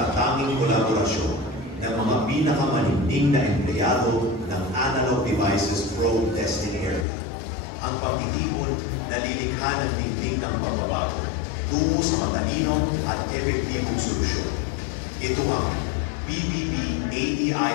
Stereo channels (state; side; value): drops out; right; at 7.1 s